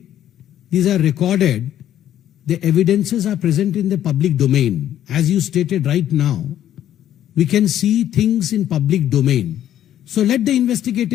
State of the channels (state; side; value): quieter; right; 11.4 dB